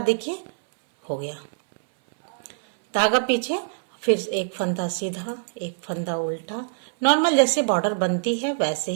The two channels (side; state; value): left; silent; 60 dB below the other